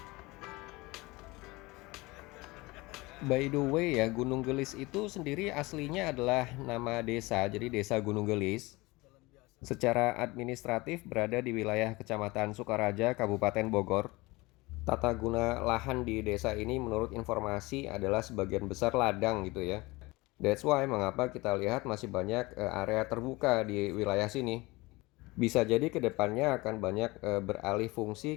By the way ya, Gunung Gelis itu sendiri aslinya adalah nama desa, jadi Desa Gunung Gelis. Secara administratif berada di wilayah Kecamatan Sukaraja, Kabupaten Bogor. Tata guna lahan di desa ini menurut informasi adalah sebagian besar ladang gitu ya. That's why mengapa kita lihat masih banyak area terbuka di wilayah sini. Bisa jadi ke depannya akan banyak beralih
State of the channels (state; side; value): quieter; right; 22.6 dB